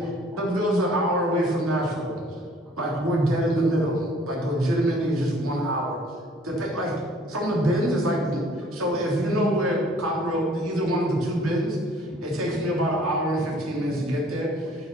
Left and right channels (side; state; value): both; normal; correlation 0.56